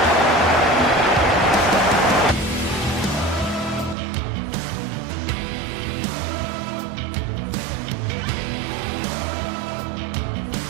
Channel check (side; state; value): left; drops out; at 4.0 s